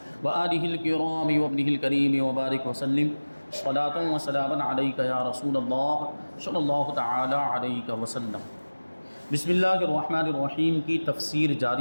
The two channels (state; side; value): inverted; both; correlation -1.00